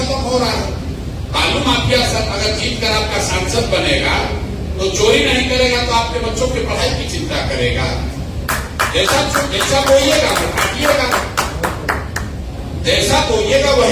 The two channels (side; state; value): both; identical; correlation 1.00